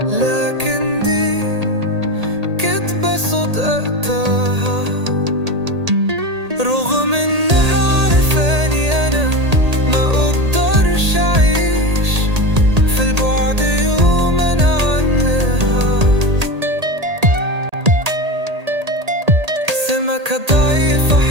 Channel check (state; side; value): late; left; 1.8 ms